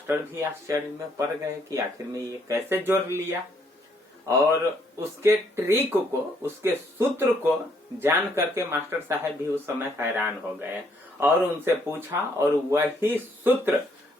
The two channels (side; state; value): both; normal; correlation 0.69